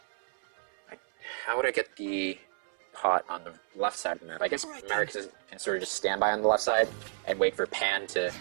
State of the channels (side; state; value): left; silent; 57 dB below the other